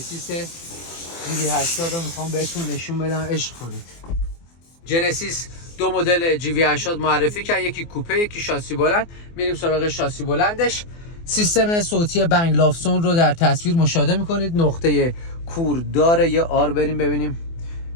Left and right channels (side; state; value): right; late; 24 ms